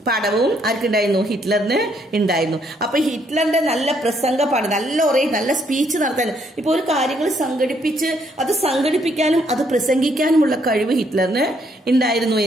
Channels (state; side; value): normal; both; correlation 0.70